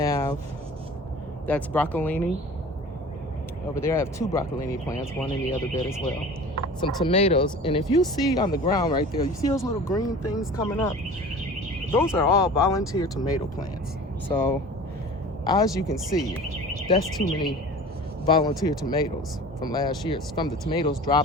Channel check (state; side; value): normal; both; correlation 0.40